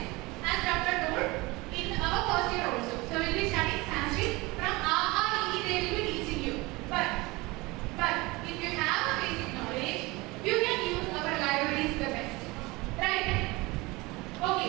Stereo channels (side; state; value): left; quieter; 23.0 dB